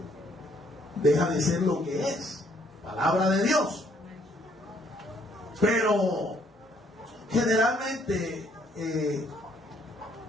de ser lo que es, palabra de Dios. Pero generalmente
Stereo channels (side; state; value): both; normal; correlation 0.66